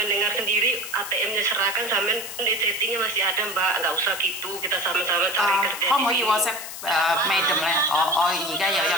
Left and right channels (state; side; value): noise; left; hiss, 10 dB below the sound